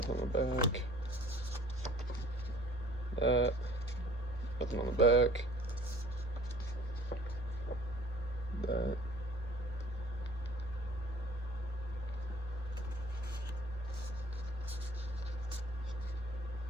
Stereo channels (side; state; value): both; normal; correlation 0.50